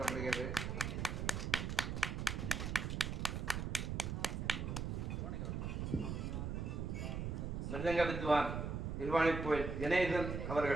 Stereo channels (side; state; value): right; noise; rumble, 2 dB below the sound